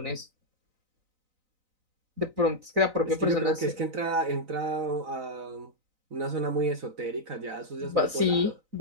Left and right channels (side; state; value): left; late; 4.0 ms